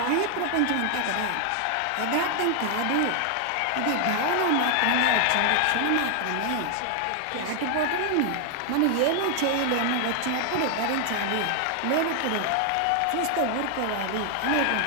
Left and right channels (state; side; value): different; both; correlation 0.00